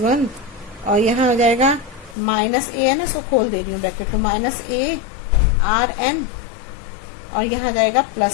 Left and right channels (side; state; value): right; drops out; at 2.1 s